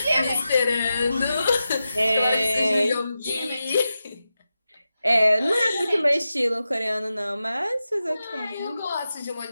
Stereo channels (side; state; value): both; inverted; correlation -0.91